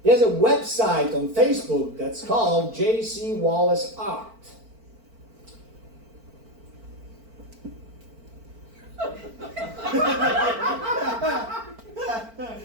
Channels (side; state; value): left; late; 4.4 ms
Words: There's a website on Facebook that's called J.C. Wallace Art.